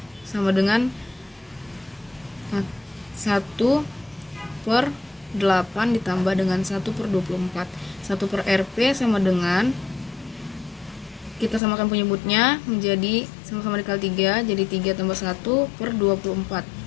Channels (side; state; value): right; drops out; at 11.6 s